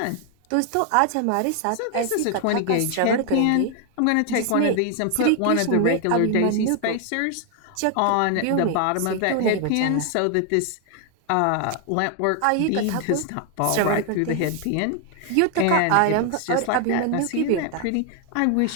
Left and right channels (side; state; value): both; different; correlation 0.00